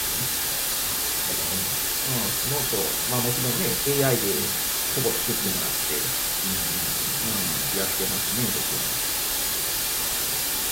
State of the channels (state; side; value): identical; both; correlation 1.00